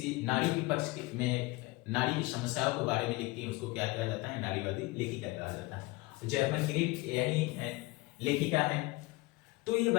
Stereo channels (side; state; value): right; quieter; 22.4 dB